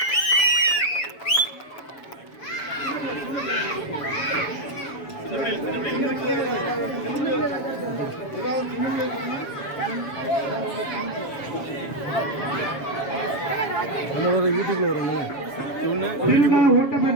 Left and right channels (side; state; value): right; late; 7.2 ms